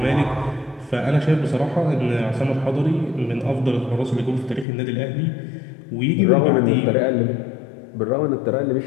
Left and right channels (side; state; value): right; drops out; at 4.7 s